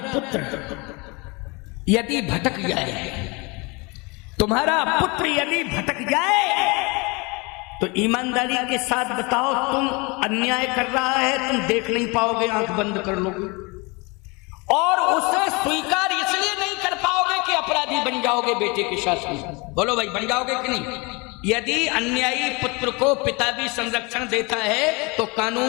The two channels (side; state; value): right; quieter; 27.8 dB